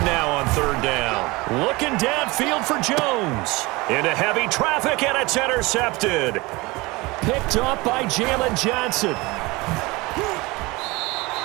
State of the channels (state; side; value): quieter; left; 23.1 dB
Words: now on 3rd down. Looking downfield for Jones. Into heavy traffic, and it's intercepted. Picked off by Jalen Johnson.